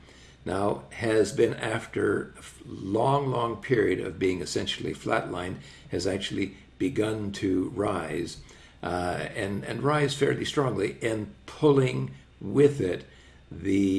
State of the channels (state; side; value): identical; both; correlation 1.00